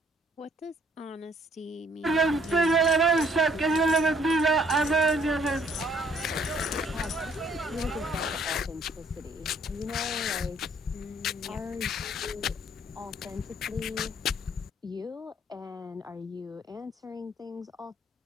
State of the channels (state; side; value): normal; both; correlation 0.63